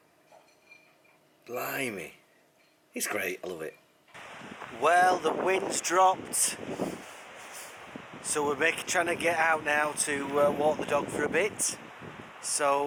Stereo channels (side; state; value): both; identical; correlation 1.00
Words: Blimey. It's great, I love it. Well, the wind's dropped. So we're trying to get out now to walk the dog for a bit.